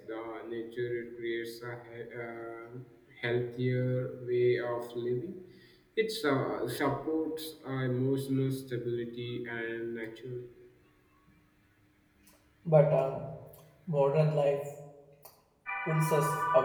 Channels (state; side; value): identical; both; correlation 1.00